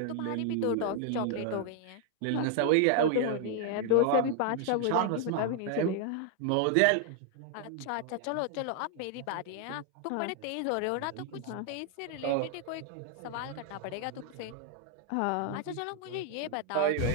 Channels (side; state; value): both; different; correlation 0.00